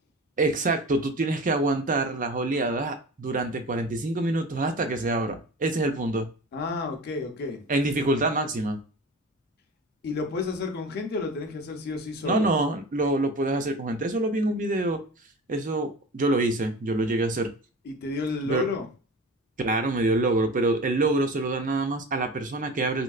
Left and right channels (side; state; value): both; normal; correlation 0.35